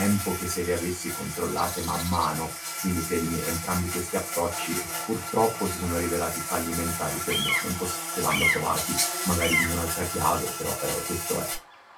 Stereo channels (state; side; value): identical; both; correlation 1.00